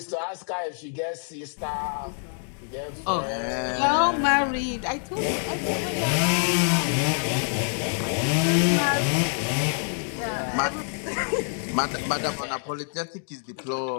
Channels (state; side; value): silent; right; 61 dB below the other